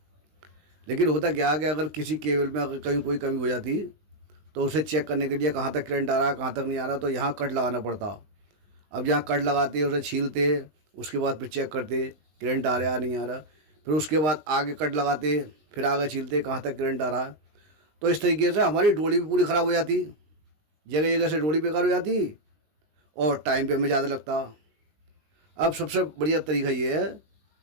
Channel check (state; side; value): late; left; 20 ms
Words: लेकिन होता क्या कि अगर किसी केबल में अगर कहीं कोई कमी हो जाती तो उसे चेक करने के लिए कहाँ तक करंट आ रहा है, कहाँ तक नहीं आ रहा, तो यहाँ कट लगाना पड़ता। अब जहाँ कट लगाते उसे छीलते, उसके बाद फिर चेक करते करंट आ रहा है नहीं आ रहा, फिर उसके बाद आगे कट लगाते, फिर आगे छीलते कहाँ तक करंट आ रहा है। तो इस तरीके से हमारी डोली भी पूरी ख़राब हो जाती, जगह जगह से डोली बेकार हो जाती और टाइम पे हमें ज़्यादा लगता। अब सबसे बढ़िया तरीका ये है